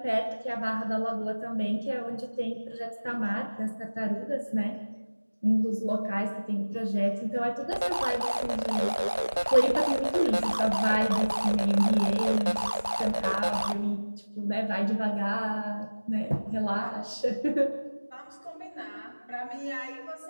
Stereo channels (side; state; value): both; inverted; correlation -1.00